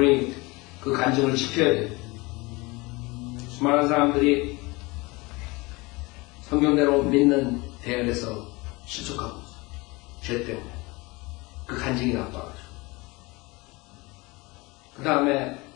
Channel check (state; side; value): quieter; right; 24.4 dB